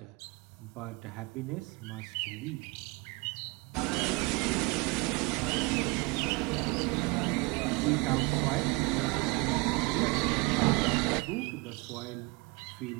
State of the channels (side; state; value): left; quieter; 26.4 dB